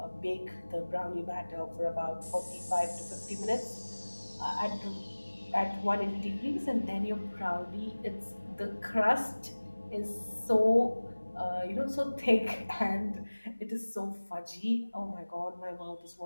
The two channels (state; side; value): inverted; both; correlation -1.00